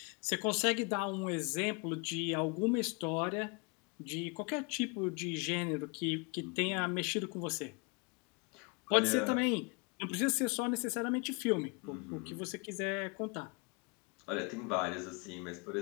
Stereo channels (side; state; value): right; quieter; 32.0 dB